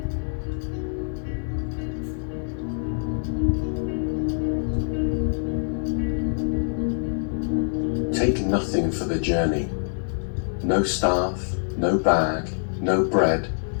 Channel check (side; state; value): right; silent; digital silence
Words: Take nothing for the journey, no staff, no bag, no bread,